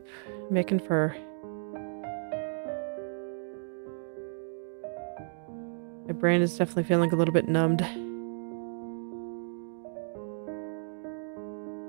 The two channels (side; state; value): left; silent; digital silence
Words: making fur. My brain is definitely feeling a little bit numbed.